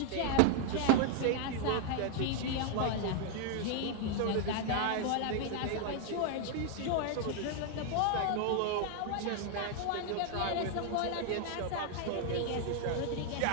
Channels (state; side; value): different; both; correlation 0.00